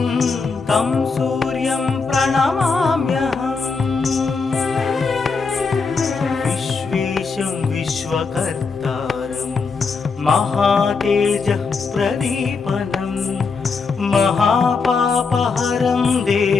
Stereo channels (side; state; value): right; quieter; 4.7 dB